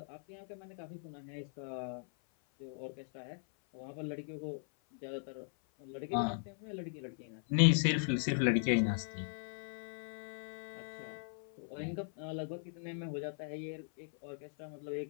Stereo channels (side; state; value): right; silent; 52 dB below the other